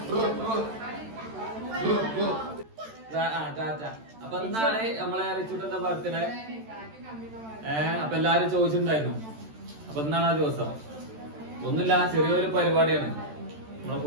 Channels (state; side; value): late; left; 13 ms